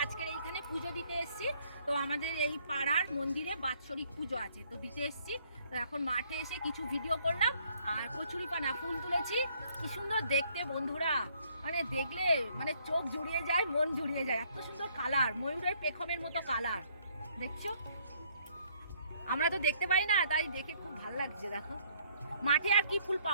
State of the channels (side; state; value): both; inverted; correlation -0.65